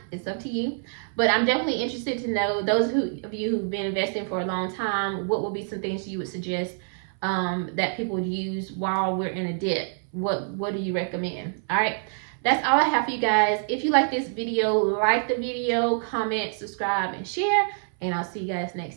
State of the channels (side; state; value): left; silent; 59 dB below the other